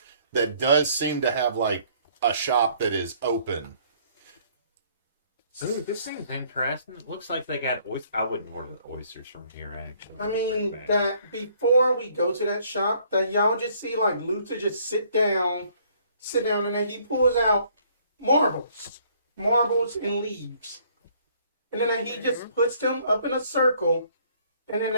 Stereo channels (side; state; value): both; inverted; correlation -0.62